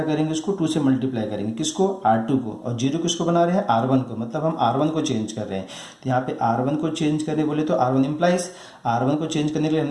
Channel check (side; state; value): both; identical; correlation 1.00